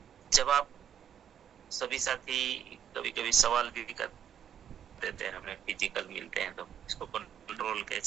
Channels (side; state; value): left; quieter; 8.8 dB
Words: जब आप सभी साथी कभी कभी सवाल भी कर देते हैं, हमें फिजिकल मिलते हैं, तो इसको कंट्रोल